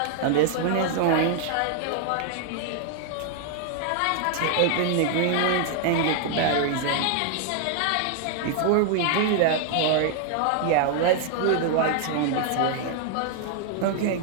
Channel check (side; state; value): both; different; correlation 0.00